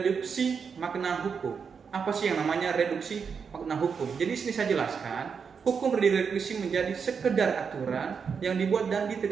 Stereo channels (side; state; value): left; quieter; 6.1 dB